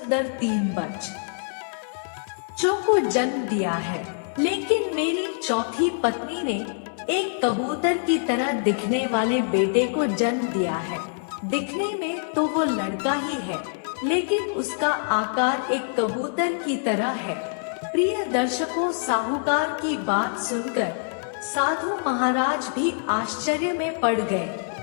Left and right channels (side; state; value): right; silent; digital silence